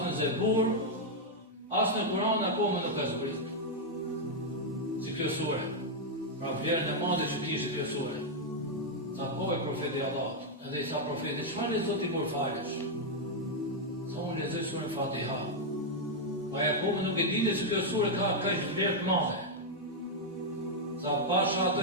në Zebur, as në Kur'an akoma nuk ka zbrit." Si kjo sure, pra vlerën e madhe që kishte kjo sure. Tha: "Po, e profeti Allahut." Edhe i tha profeti: "Çfarë lexo ti kur falesh?" Tha: "Unë lexoj surën Fatiha." Pa e akoma nuk e dinte se kjo sure ka kaq vlerë të madhe. Tha: "Pasha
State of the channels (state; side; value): normal; both; correlation -0.02